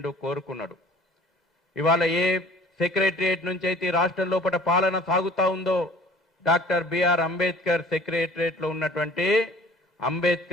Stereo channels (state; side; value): normal; both; correlation 0.49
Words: కోరుకున్నాడు. ఇవాళ ఏ సెక్రటరియట్ నుంచి అయితే రాష్ట్రం లోపల పాలన సాగుతా ఉందో డాక్టర్ బిఆర్ అంబేద్కర్ సెక్రటరియట్లో ఉన్నటువంటి